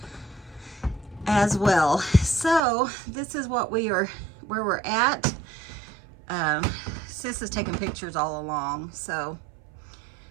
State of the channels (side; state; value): left; drops out; at 2.7 s